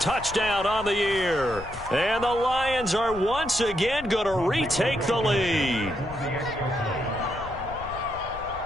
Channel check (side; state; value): left; noise; rumble, 14 dB below the sound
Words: on the year. And the Lions are once again going to retake the lead.